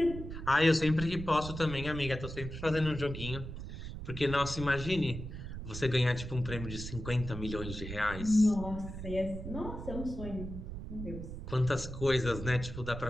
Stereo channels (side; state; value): right; noise; rumble, 8 dB below the sound